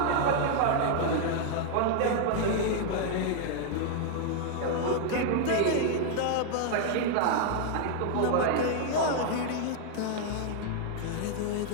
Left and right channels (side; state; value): both; different; correlation 0.00